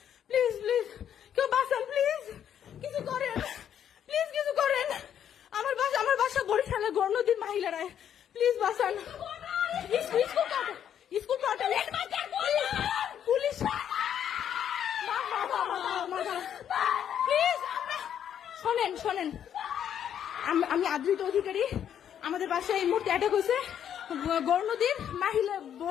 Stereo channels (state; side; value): quieter; right; 9.4 dB